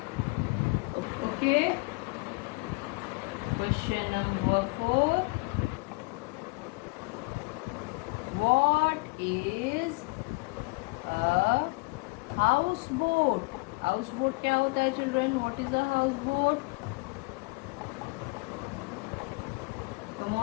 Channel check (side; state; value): right; quieter; 27.6 dB